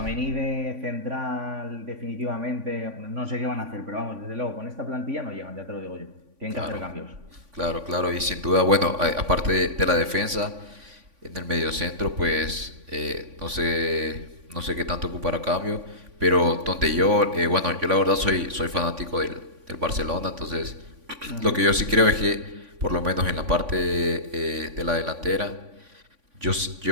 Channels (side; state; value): left; late; 3.5 ms